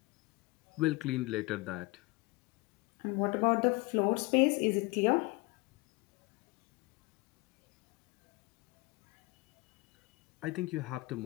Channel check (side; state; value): right; quieter; 24.3 dB